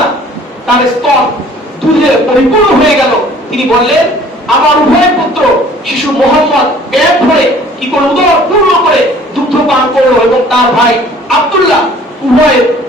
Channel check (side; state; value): both; normal; correlation 0.52